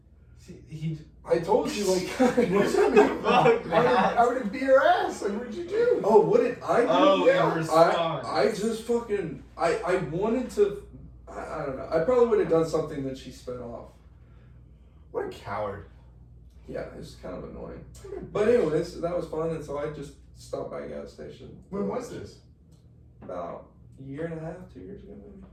See, I told you, What's that mean? Fuck, man. I would have beat her ass. What'd you do? oh, what did I do? Oh, Yeah. in response. I just fucking, I wanted to, I don't know. I probably would have done something that she sped off. What a coward. Yeah, it was kind of annoying. But anyways, that was fun, and so I just stopped by a gas station. When was this? About a year and a half, 2 years ago maybe.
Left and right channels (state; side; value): identical; both; correlation 1.00